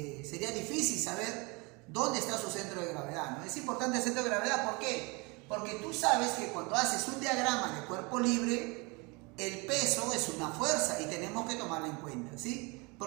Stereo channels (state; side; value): quieter; left; 28.2 dB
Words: sería difícil saber dónde está su centro de gravedad, ¿no? Es importante el centro de gravedad, ¿por qué? Porque tú sabes que cuando haces un diagrama de cuerpo libre, el peso es una fuerza y tenemos que tomarla en cuenta, ¿sí?